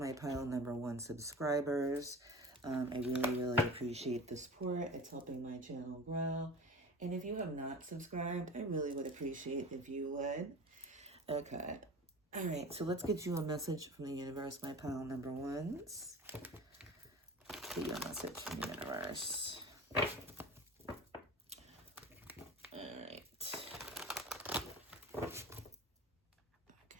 pile number 1 subscribers. I really appreciate the support. It's helping my channel grow. And if you have not subscribed, I really would appreciate if you would. Okay. All right, so let's get you a message from the universe, my pile number 1s. Get you a message from the universe. All right. Okay.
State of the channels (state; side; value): normal; both; correlation 0.36